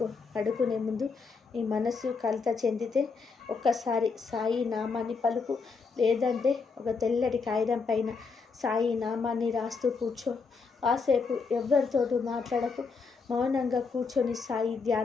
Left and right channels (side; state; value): right; quieter; 4.8 dB